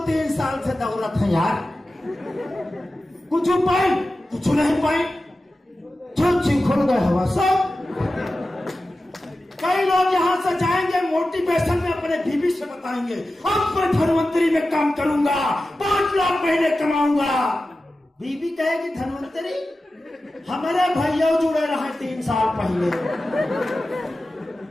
3 साल से दौलत है यार, कुछ पाई, कुछ नहीं पाई, छुच्छी खुल गए हवा सब। कई लोग यहां से जाएंगे, मोटिवेशन में अपने बीवी से बताएंगे अब मैं धनवंतरी में काम करूंगा, 5 लाख महीने कमाऊंगा। बीवी कहेगी धनवंतरी हमारे भैया जुड़े रहे 3 साल पहले,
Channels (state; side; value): normal; both; correlation 0.94